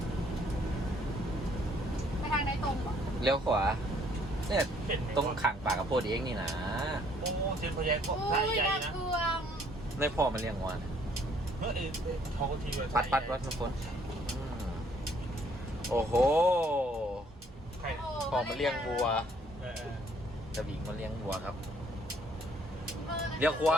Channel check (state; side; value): normal; both; correlation 0.63